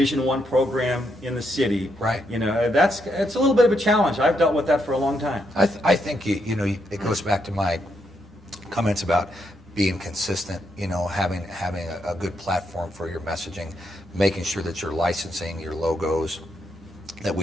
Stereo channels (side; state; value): both; normal; correlation 0.78